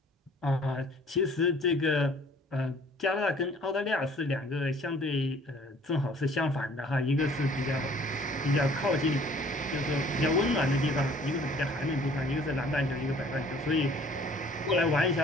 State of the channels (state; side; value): normal; both; correlation 0.55